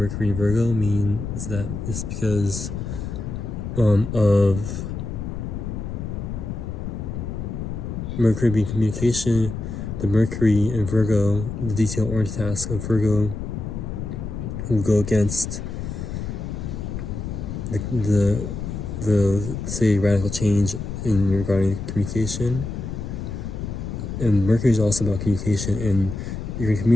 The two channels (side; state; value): left; noise; rumble, 6 dB below the sound